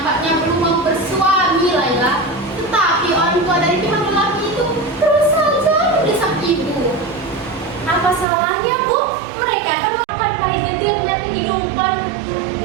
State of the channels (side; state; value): left; drops out; at 8.2 s